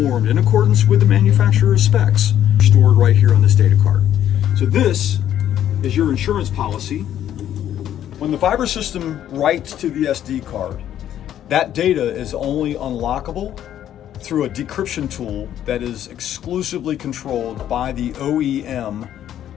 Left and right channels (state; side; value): quieter; right; 11.0 dB